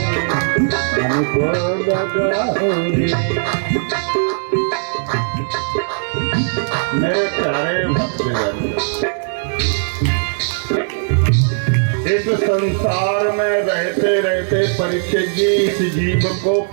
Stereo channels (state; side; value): silent; left; digital silence